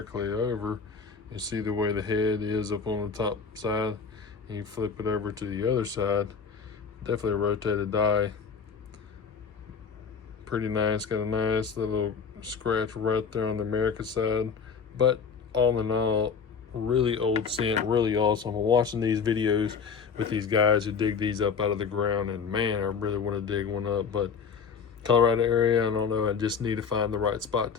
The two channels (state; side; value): quieter; right; 6.0 dB